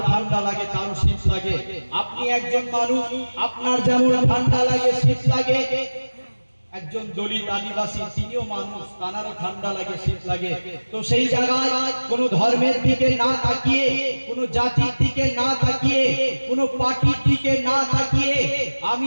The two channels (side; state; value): both; inverted; correlation -1.00